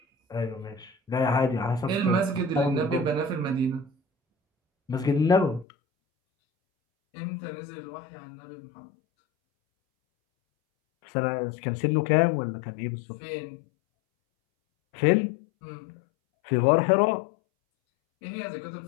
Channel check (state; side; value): drops out; right; at 5.7 s